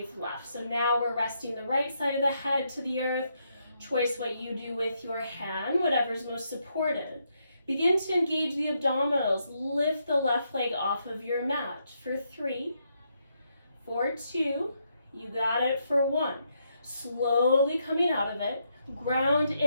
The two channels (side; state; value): both; inverted; correlation -0.78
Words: left. So now we're resting the right side of the head to the earth. Choice what you do with your hand, whatever's most supported. Begin to engage the abdominals. Lift the left leg off of your mat. For 3, for 2, you got it for 1. Slowly coming out of it, ground